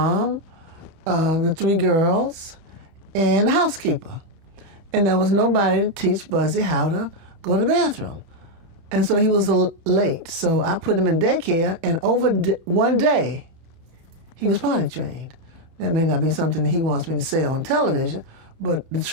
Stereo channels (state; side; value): late; left; 31 ms